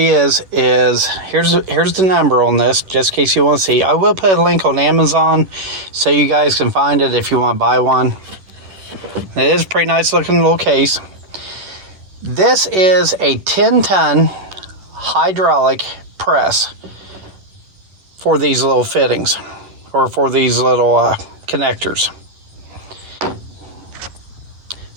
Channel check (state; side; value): late; left; 11 ms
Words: is here's the number on this, just in case you want to see. I will put a link on Amazon so you guys can find it if you want to buy one. It is a pretty nice looking little case. This is a 10-ton hydraulic press for these little fittings, or for these little connectors.